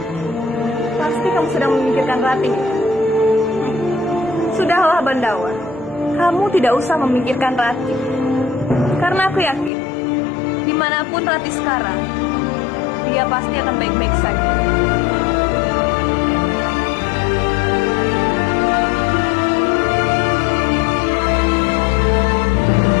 Pasti kamu sedang memikirkan Rati. Sudahlah, Bandawa. Kamu tidak usah memikirkan Rati. Karena aku yakin, dimanapun Rati sekarang, dia pasti akan baik-baik saja.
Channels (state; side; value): drops out; right; at 9.7 s